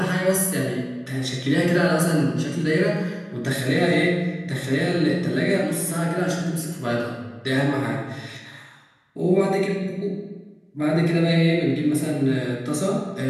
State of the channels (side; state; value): both; identical; correlation 1.00